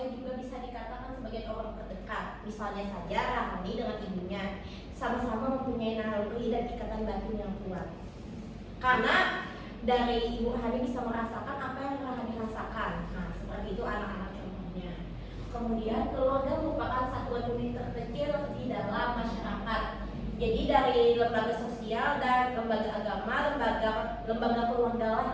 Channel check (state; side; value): identical; both; correlation 1.00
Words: juga bisa dikatakan sebagai orang terdekat. Misalnya saja Rahani dengan ibunya sama-sama mempunyai naluri dan ikatan batin yang kuat. Karena dari ibu Rahani bisa merasakan apa yang Rahani rasakan. Nah, seperti itu anak-anak contohnya. Kemudian keluarga merupakan satuan unit terkecil di dalam masyarakat. Jadi dari lembaga sosial dan lembaga agama, lembaga keluarga